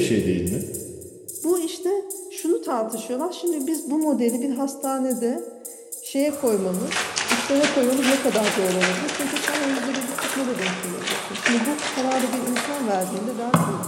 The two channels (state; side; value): identical; both; correlation 1.00